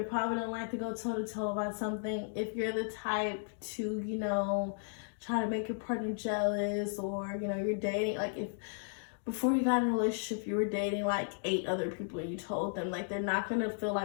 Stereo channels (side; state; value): right; silent; digital silence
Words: probably don't like to go toe-to-toe about something. If you're the type to, you know, try to make your partner jealous, or you know, you're dating, like if before you got in a relationship you were dating like 8 other people and you told them, like, they're not gonna feel